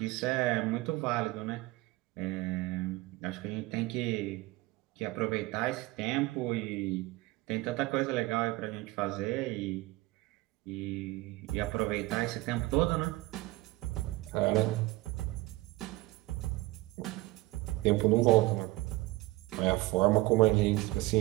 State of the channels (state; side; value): quieter; left; 19.9 dB